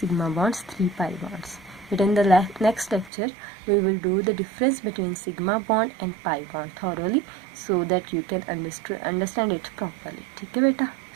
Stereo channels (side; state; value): left; drops out; at 3.1 s